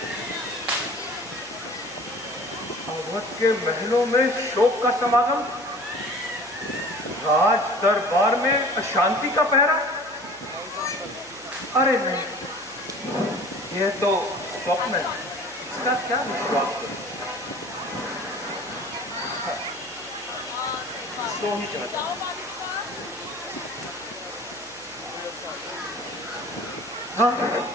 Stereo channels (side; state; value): left; noise; hum, 27 dB below the sound